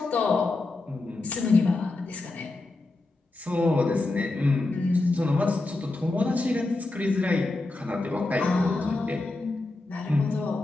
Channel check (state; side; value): quieter; right; 3.1 dB